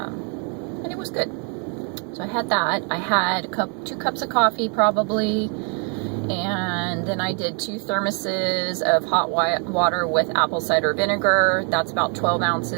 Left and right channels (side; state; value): left; quieter; 38.4 dB